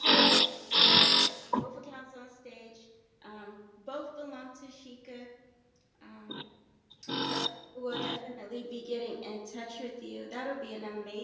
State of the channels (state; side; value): identical; both; correlation 1.00